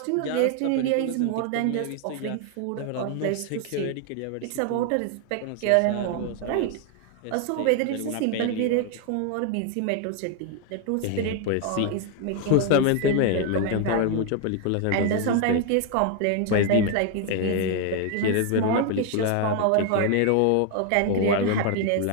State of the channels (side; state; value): both; different; correlation 0.00